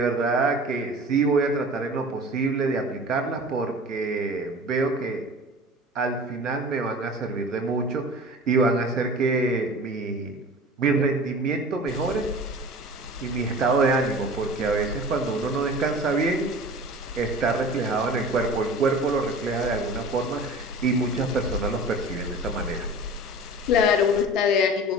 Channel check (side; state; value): both; normal; correlation 0.39